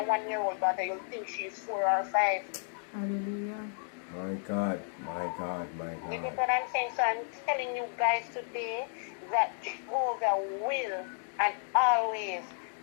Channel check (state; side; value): silent; right; 56 dB below the other